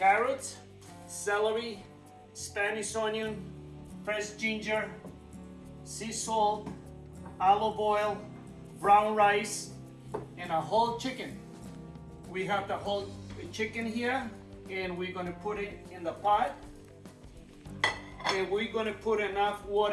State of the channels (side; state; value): both; identical; correlation 1.00